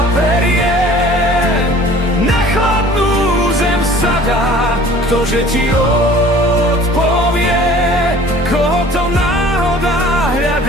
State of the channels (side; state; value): both; normal; correlation 0.48